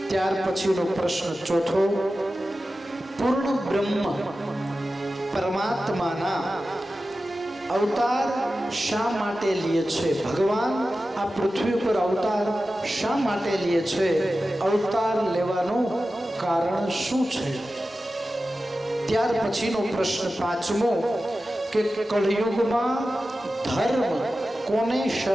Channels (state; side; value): normal; both; correlation 0.94